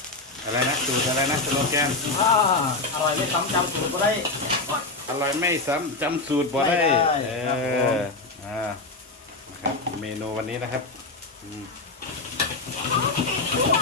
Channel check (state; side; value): quieter; right; 3.3 dB